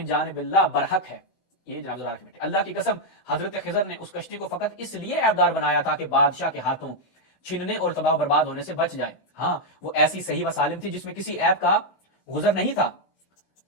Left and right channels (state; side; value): late; right; 16 ms